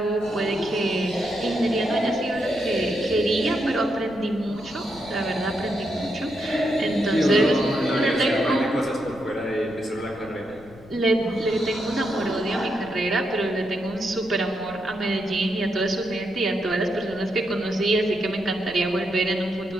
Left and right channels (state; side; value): noise; left; rumble, 21 dB below the sound